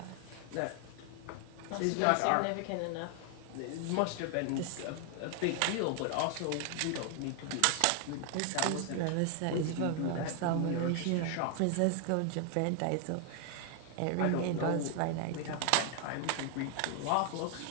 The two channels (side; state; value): both; different; correlation 0.00